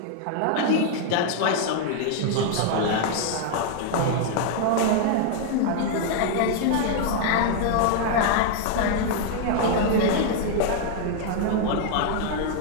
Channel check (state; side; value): different; both; correlation 0.00